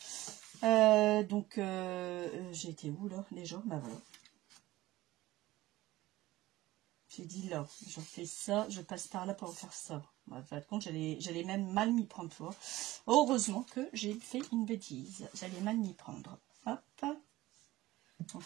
Donc, j'ai été où là déjà? Bah voilà. J'ai dit là, je fais ça, je passe par là pour faire ça. Bah, en fin de compte, j'allais même mal m'y prendre, tu vois. Heureusement que j'ai fait une bêtise. J'allais mal m'y prendre. Hop.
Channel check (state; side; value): quieter; left; 17.5 dB